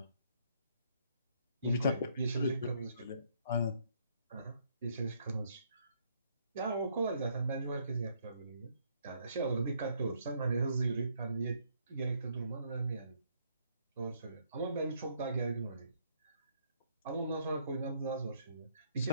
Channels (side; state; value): both; inverted; correlation -0.69